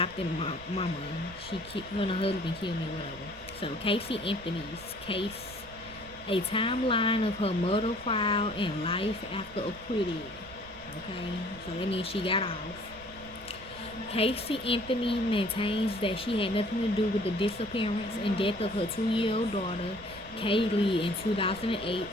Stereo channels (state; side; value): noise; right; rumble, 19 dB below the sound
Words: mama. Her and her husband killed me, whatever. So Casey Anthony's case, a timeline of her murder trial and life after acquitted. Okay. So that means she got off. Casey Anthony maintains that she had nothing to do with the disappearance and death of her 2-year-old daughter, Kaylee, in 2008.